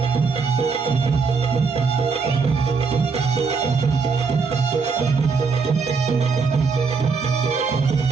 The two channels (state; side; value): quieter; left; 4.9 dB